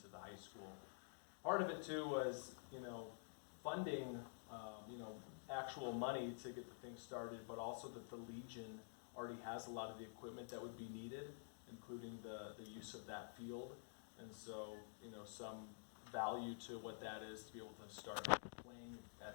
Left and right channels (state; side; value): silent; right; digital silence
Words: to the high school. Part of it too was, you know, funding, you know, actual money to get the thing started, but also that the Legion already has a lot of the equipment that would be needed, including the use of that field. And so, you know, some value to what that is to be able to start playing